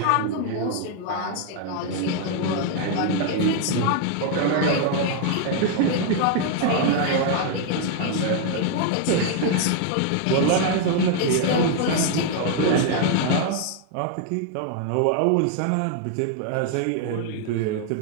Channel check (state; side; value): different; both; correlation 0.00